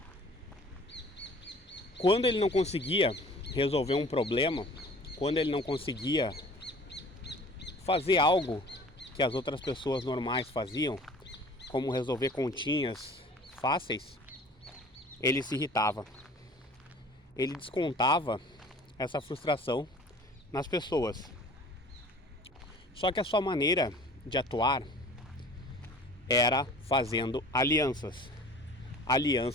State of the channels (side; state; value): both; normal; correlation 0.47